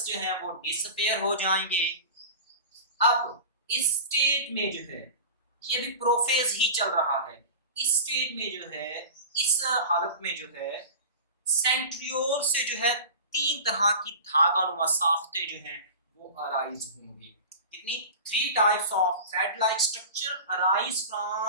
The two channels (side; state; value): both; inverted; correlation -0.34